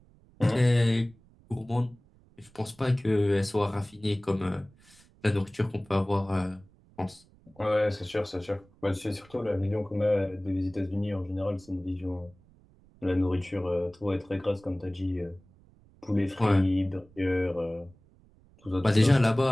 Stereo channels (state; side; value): noise; right; rumble, 28 dB below the sound